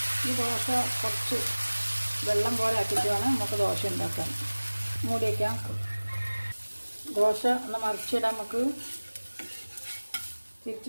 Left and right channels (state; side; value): inverted; both; correlation -1.00